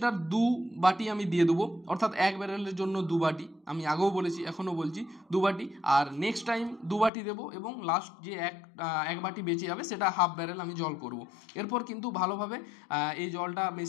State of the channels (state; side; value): drops out; right; at 7.1 s